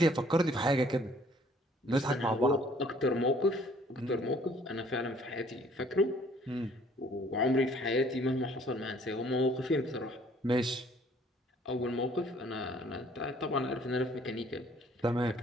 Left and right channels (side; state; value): both; normal; correlation 0.59